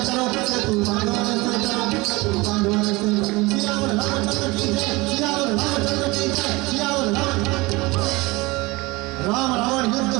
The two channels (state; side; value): quieter; left; 22.9 dB